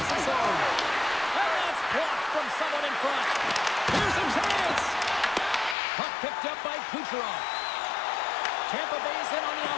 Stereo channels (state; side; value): drops out; right; at 5.8 s